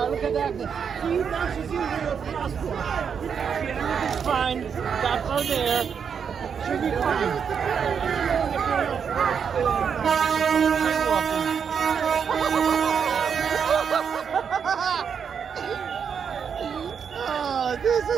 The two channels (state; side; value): quieter; left; 7.0 dB